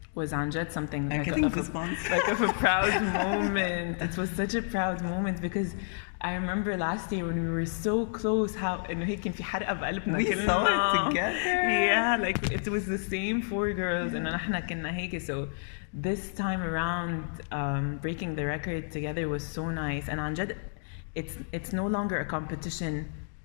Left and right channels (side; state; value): right; silent; digital silence